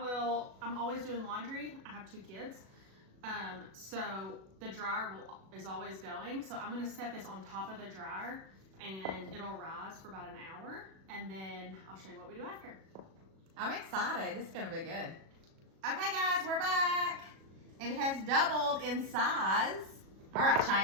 always doing laundry. I have 2 kids. So the dryer is always going. So I'm gonna set this on top of the dryer, and it'll rise for about an hour, and then I'll show you what we do after. I'm excited. This is gonna be good. Okay, guys, we're back. It has doubled in size. All right,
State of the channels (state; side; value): late; left; 37 ms